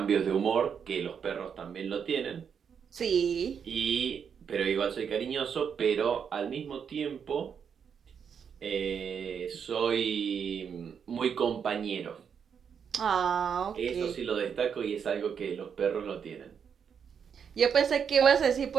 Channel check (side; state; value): left; quieter; 7.2 dB